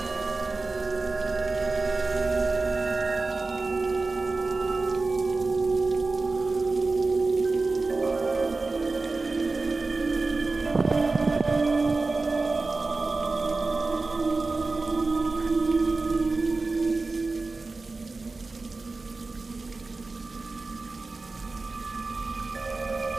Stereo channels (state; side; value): quieter; left; 3.6 dB